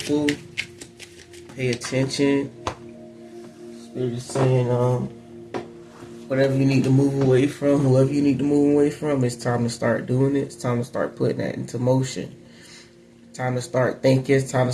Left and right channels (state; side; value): identical; both; correlation 1.00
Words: Pay attention. Spirit is saying, whatever you need to move away from, whoever you need to move away from, it's time to start doing it. It's time to start putting that into motion. Time to start thinking. It's time to